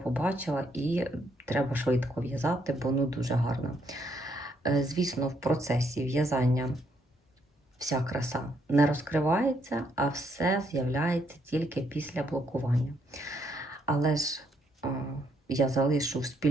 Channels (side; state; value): both; normal; correlation 0.73